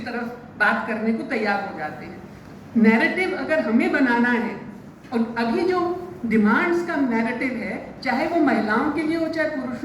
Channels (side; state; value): both; identical; correlation 1.00